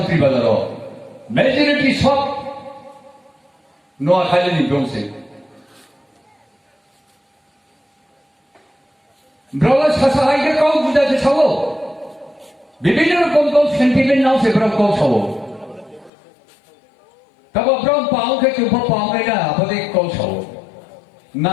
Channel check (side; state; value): right; drops out; at 16.1 s